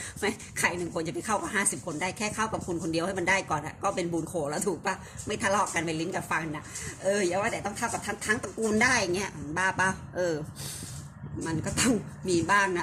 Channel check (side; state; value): both; identical; correlation 1.00